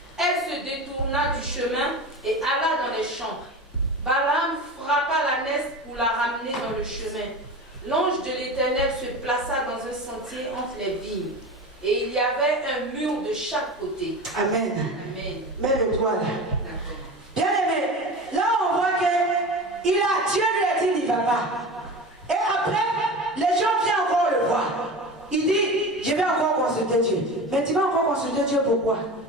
Elle se détourna du chemin et alla dans les champs. Balaam frappa l'ânesse pour la ramener dans le chemin. L'ange de l'Éternel se plaça dans un sentier entre les vignes. Et il y avait un mur de chaque côté. Amen. Amen. Mets-le-toi là. Bien aimé, là on voit que Dieu lui a dit il ne va pas. Et après, les gens viennent encore le voir. Il dit, je vais encore consulter Dieu. Mais tu vas encore consulter Dieu pourquoi?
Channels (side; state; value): both; normal; correlation 0.30